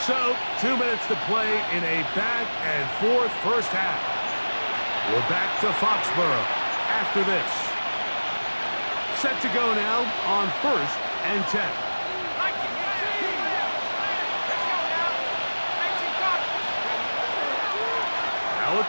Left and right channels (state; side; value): inverted; both; correlation -1.00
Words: So, 2 minutes to play in a back-and-forth first half. We're back to Foxborough after this. Set to go now on first and 10. Now a